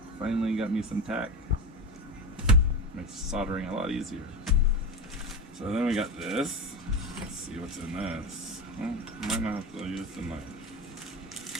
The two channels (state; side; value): normal; both; correlation 0.21